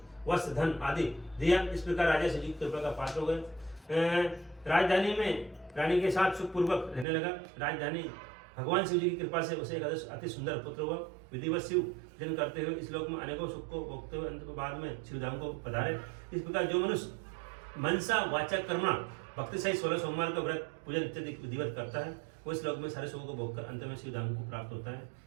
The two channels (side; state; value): left; drops out; at 7.1 s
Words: वस्त्र धन आदि दिया। इस प्रकार राजा शिव जी की कृपा का पात्र हो गए। राजधानी में रानी के साथ सुखपूर्वक रहने लगा। राजधानी भगवान शिव जी की कृपा से उसे एक अति सुंदर पुत्र हुआ। विधिवत शिव जन करते हुए इस लोक में अनेकों सुख को भोगते हुए अंत के बाद में शिवधाम को पधारे। इस प्रकार जो मनुष्य मनसा वाचा कर्मणा भक्ति सहित 16 सोमवार का व्रत पूजन इत्यादि विधिवत करता है, वो इस लोक में सारे सुखों को भोगकर अंत में शिवधाम को प्राप्त होता है।